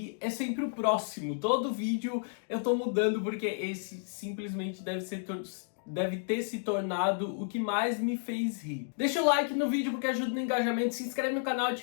é sempre o próximo. Todo vídeo eu tô mudando porque esse simplesmente deve ter se tornado o que mais me fez rir. Deixa o like no vídeo porque ajuda no engajamento, se inscreve no canal,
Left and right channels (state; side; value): silent; right; digital silence